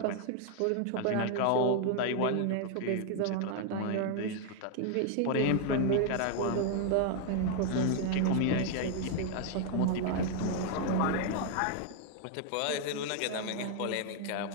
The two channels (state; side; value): different; both; correlation 0.00